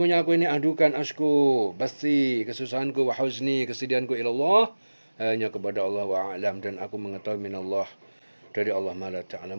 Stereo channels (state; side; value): inverted; both; correlation -1.00